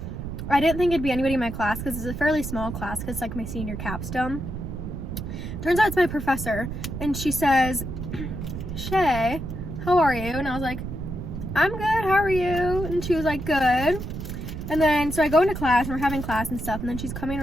I didn't think it'd be anybody in my class because it's a fairly small class, because it's, like, my senior capstone. Turns out it's my professor, and she says, Shay, how are you? And I was like, I'm good, how are you? And she was like, good. And then so I go into class, and we're having class and stuff, and then she's coming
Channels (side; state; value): right; noise; rumble, 7 dB below the sound